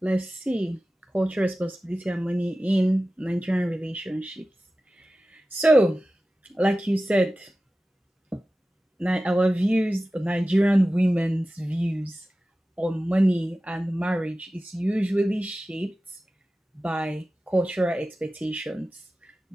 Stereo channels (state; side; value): normal; both; correlation 0.95